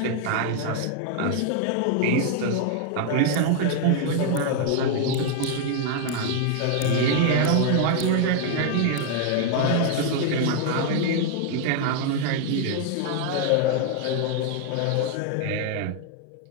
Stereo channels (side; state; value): both; different; correlation 0.00